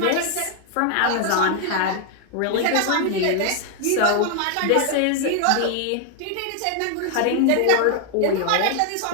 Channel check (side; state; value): both; different; correlation 0.00